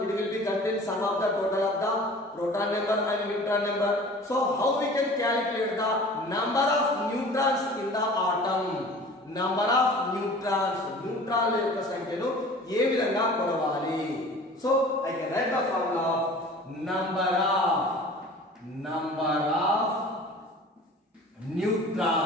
it will be contain sum of the total of the proton number and neutron number. So how we can calculate the number of neutrons in the atom? Number of neutrons, neutron యొక్క సంఖ్యను ఏ విధంగా కొలవాలి? So I can write the formula of number of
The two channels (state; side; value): normal; both; correlation 0.43